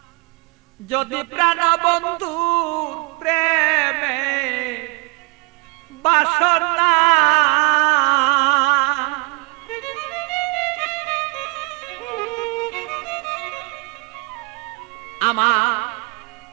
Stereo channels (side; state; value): left; quieter; 28.9 dB